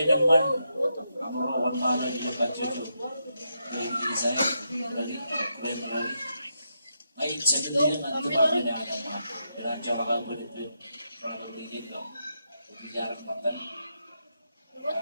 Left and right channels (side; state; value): both; inverted; correlation -0.83